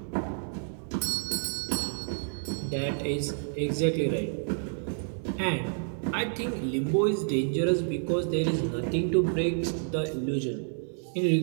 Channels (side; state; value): left; silent; 58 dB below the other